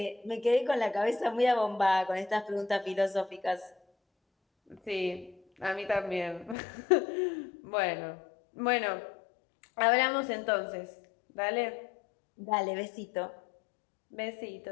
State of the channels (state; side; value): drops out; right; at 6.6 s